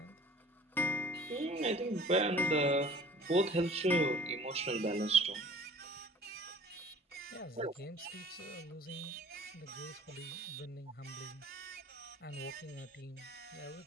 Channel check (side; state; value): both; normal; correlation 0.48